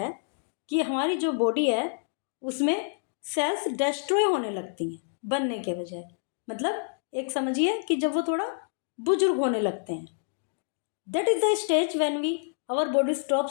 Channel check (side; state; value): right; silent; digital silence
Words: कि हमारी जो बॉडी है उसमें सेल्स डिस्ट्रॉय होने लगती हैं बनने के बजाय. मतलब एक समझिए कि जब वो थोड़ा बुजुर्ग होने लगते हैं. That is the stage when we our body